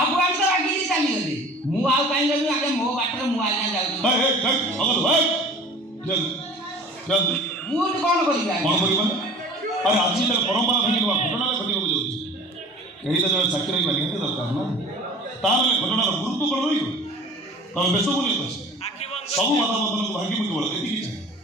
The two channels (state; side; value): normal; both; correlation 0.43